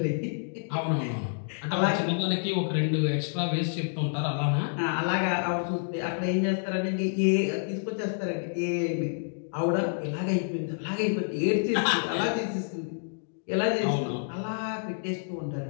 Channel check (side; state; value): right; silent; digital silence